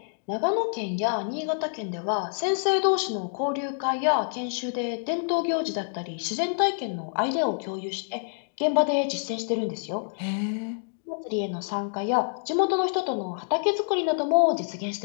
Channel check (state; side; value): silent; right; digital silence